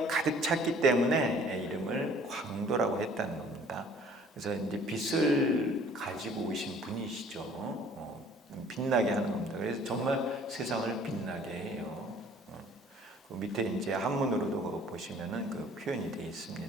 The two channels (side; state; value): both; normal; correlation 0.54